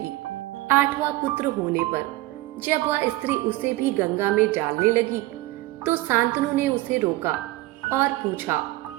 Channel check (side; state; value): left; quieter; 18.3 dB